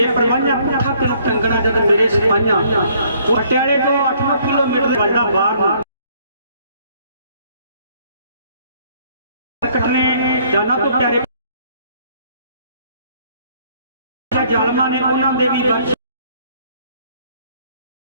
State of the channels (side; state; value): both; inverted; correlation -0.63